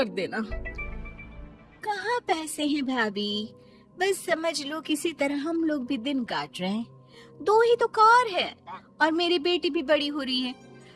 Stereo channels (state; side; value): identical; both; correlation 1.00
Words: देना। कहाँ पैसे हैं भाभी, बस समझ लो किसी तरह हम लोग भी दिन काट रहे हैं। 2 ही तो कार है और मेरी बेटी भी बड़ी हो रही है।